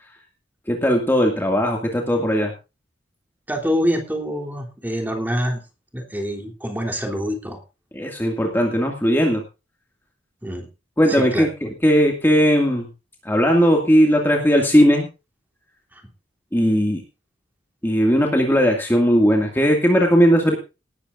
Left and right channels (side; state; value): both; normal; correlation 0.80